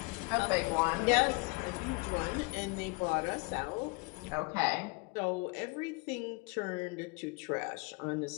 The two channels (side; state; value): right; quieter; 28.4 dB